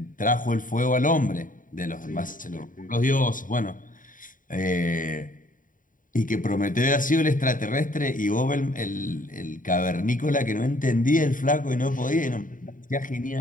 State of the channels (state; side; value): late; right; 0.39 ms